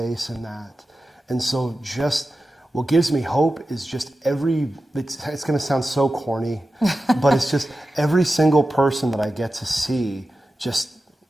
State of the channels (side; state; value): both; normal; correlation 0.93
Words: in that. And so just what gives me hope is just it's going to sound so corny, but it's just every single person that I get to see just